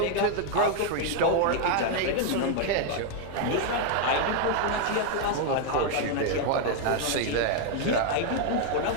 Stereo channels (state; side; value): different; both; correlation 0.00